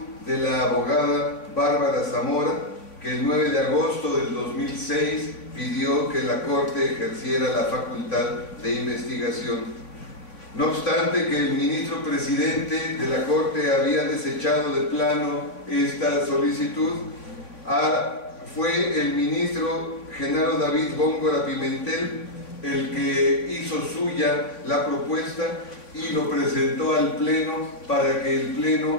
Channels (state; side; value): late; right; 3.5 ms